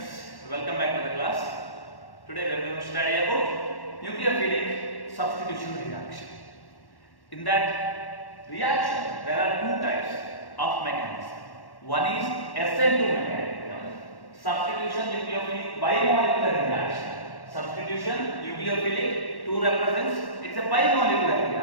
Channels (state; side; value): late; right; 1.1 ms